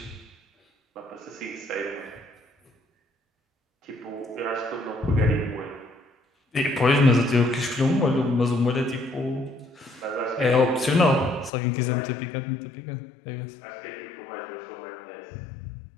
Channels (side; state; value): right; drops out; at 11.5 s